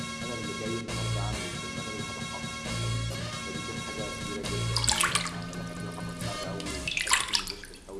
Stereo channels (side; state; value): both; identical; correlation 1.00